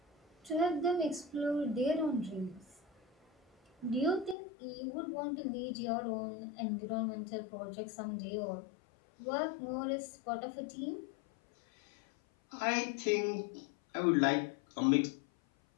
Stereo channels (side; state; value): right; drops out; at 4.4 s